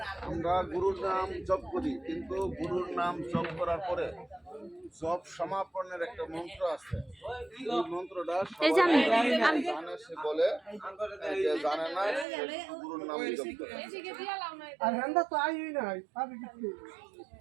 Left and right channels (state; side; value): drops out; left; at 12.2 s